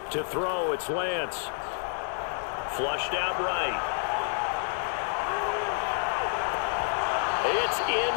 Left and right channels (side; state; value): right; silent; 59 dB below the other